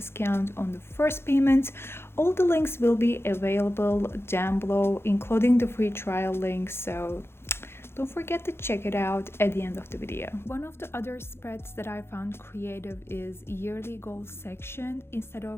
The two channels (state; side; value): late; right; 0.12 ms